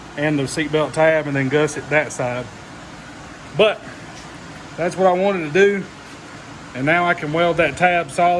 and the seatbelt tab, and then gusset that side. But that's what I wanted to do. And now I can weld that tab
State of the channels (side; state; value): both; identical; correlation 1.00